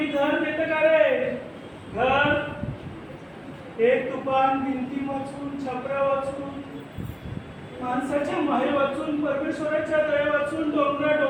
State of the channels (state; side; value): identical; both; correlation 1.00